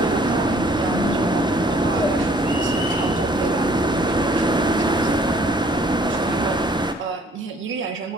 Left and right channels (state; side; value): normal; both; correlation 0.58